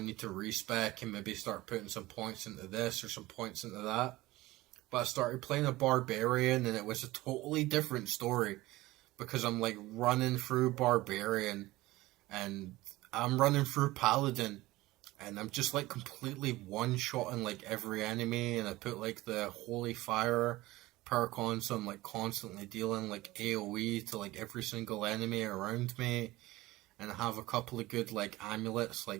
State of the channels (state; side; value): quieter; left; 18.6 dB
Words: to respec and maybe start putting some points into this or some points into that. But I started playing a barbarian, and it was a totally different story because I'm like running through barbarian and I'm running through paladin, and I'm just like completely one-shotting like every enemy, and I put like the holy fire perk on, so I'm like constantly dealing like AoE to like every single enemy around me, and I have a couple of good like amulets